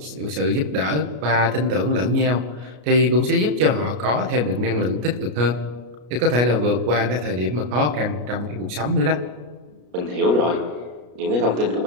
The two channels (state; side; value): late; left; 33 ms